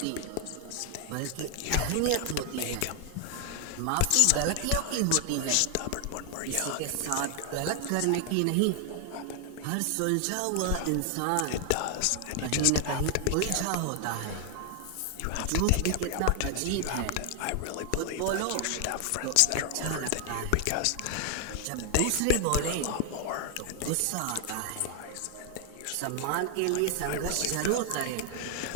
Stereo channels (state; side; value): different; both; correlation 0.00